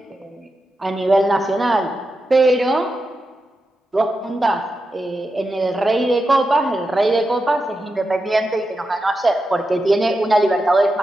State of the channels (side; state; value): both; normal; correlation 0.89